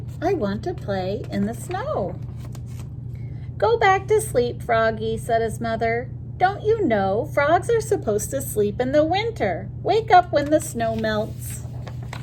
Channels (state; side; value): identical; both; correlation 1.00